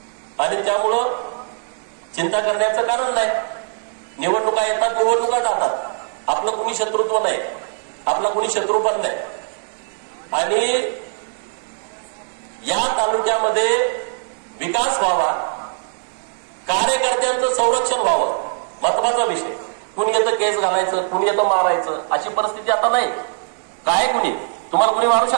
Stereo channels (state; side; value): silent; left; digital silence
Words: आणि त्यामुळं चिंता करण्याचं कारण नाही. निवडणुका येतात, निवडणुका जातात. आपलं कुणी शत्रुत्व नाही. आपला कुणी शत्रू पण नाही. आणि या तालुक्यामध्ये विकास व्हावा, कार्यकर्त्यांचं संरक्षण व्हावं, महत्वाचा विषय. कुणी येतं केस घालायचं, कुणी येतं मारायचं, अशी परिस्थिती आता नाही. काय कुणी तुम्हाला कुणी मारू